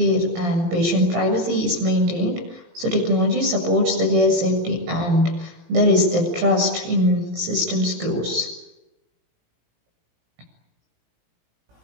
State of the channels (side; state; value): left; late; 17 ms